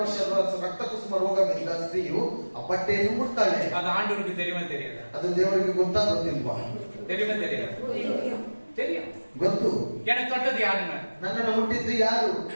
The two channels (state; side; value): inverted; both; correlation -1.00